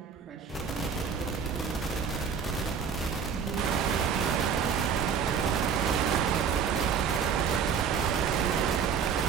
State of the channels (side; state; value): left; quieter; 6.7 dB